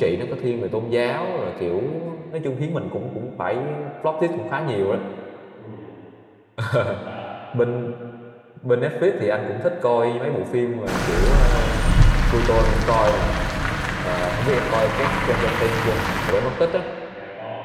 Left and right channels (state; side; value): identical; both; correlation 1.00